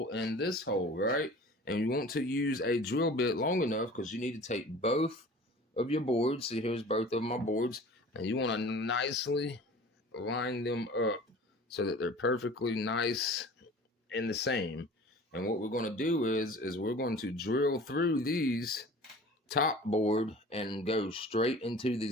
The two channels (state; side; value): normal; both; correlation 0.43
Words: and this hole, right? And you want to use a drill bit long enough because you need to take both of your boards. See, here's both of my boards, and you want to nicely line them up so that they're perfectly nice and the same. And what we're going to do is we're going to drill through these top board and go straight into the